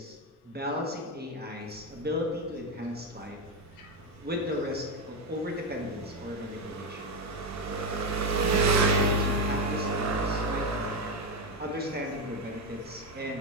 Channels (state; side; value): normal; both; correlation 0.10